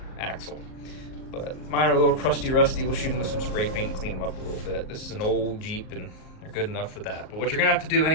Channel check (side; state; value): right; late; 38 ms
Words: axle. But mine are a little crusty rusty. We'll shoot them with some spray paint and clean them up a little bit. This is an old Jeep and they're good enough for that. But what you're gonna have to do